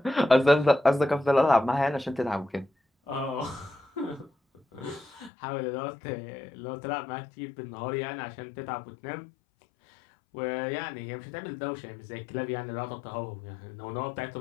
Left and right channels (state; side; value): drops out; right; at 5.3 s